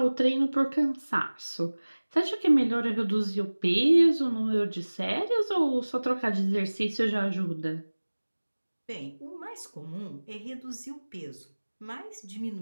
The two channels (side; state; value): both; inverted; correlation -1.00